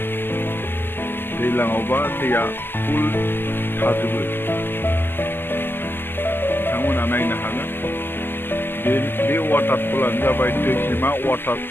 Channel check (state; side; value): late; right; 0.10 ms